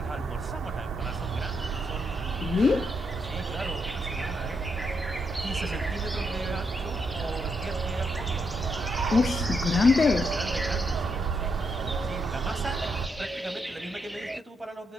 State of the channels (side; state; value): both; normal; correlation 0.79